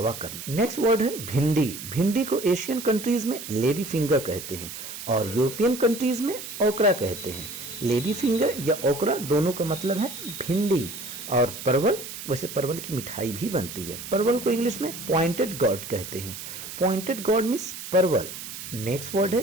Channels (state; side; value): noise; right; hiss, 10 dB below the sound